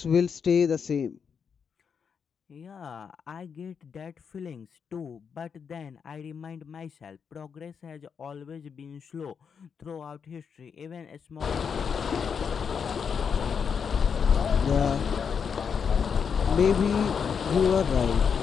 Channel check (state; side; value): quieter; right; 6.6 dB